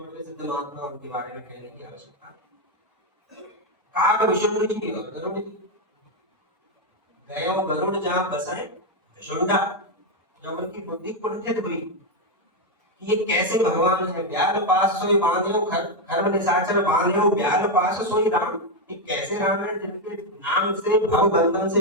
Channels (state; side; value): normal; both; correlation 0.04